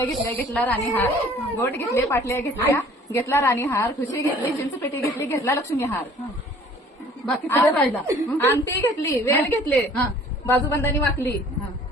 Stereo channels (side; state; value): both; normal; correlation 0.52